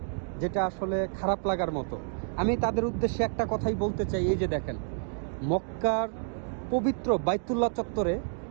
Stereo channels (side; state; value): left; silent; digital silence